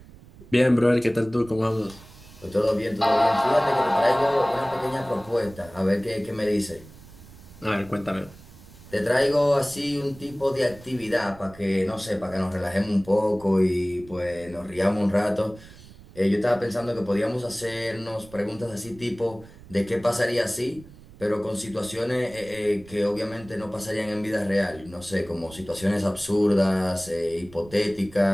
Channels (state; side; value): noise; right; rumble, 21 dB below the sound